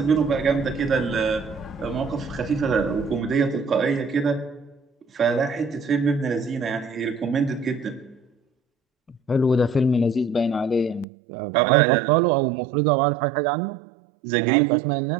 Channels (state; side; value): drops out; left; at 11.1 s